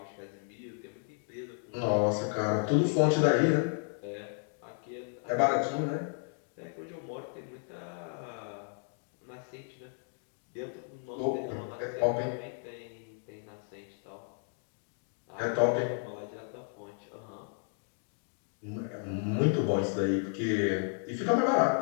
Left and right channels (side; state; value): right; silent; 56 dB below the other